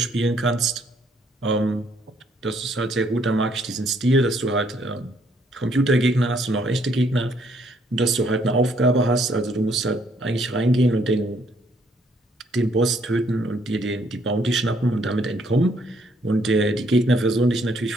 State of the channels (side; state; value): both; normal; correlation 0.68